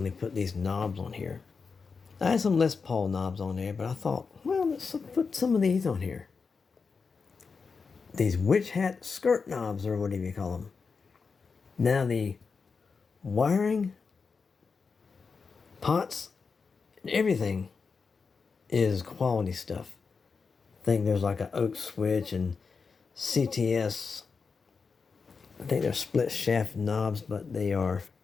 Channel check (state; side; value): quieter; right; 5.1 dB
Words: put these knobs on here. I had some Les Paul knobs on there, but I thought, well, let's put some of these on here. These witch hat skirt knobs, or whatever you call them. Now the wiring, pots, and everything is quality stuff. I think there's like an oak switch and CTS. I think they're split shaft knobs, but they are